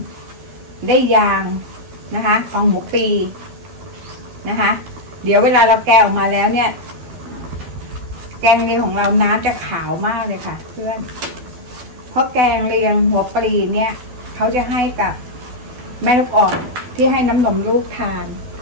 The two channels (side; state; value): left; late; 12 ms